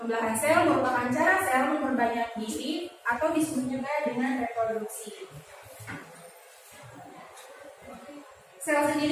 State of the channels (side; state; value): both; identical; correlation 1.00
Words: sel merupakan cara sel memperbanyak diri atau disebut juga dengan reproduksi. Sel